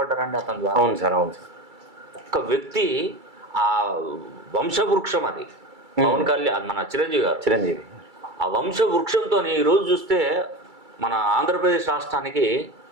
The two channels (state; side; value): late; left; 2.3 ms